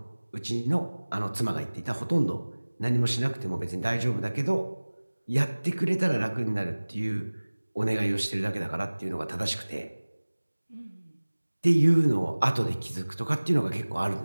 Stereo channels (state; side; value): inverted; both; correlation -1.00